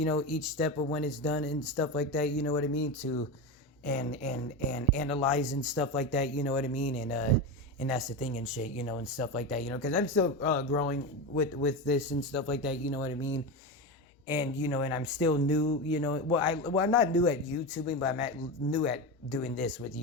know, each step of when it's done and stuff like that, you know what I mean, to and analyze and stuff like that, you know what I mean, and that's the thing and shit, you know, and stuff like that, you know, because I'm still growing with this and stuff like that, you know what I mean, and you know, and I'm still new, you know, I'm not new at YouTubing, but I'm new at doing this with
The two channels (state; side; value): normal; both; correlation 0.19